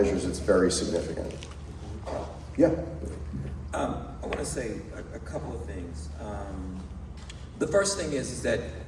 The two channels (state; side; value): identical; both; correlation 1.00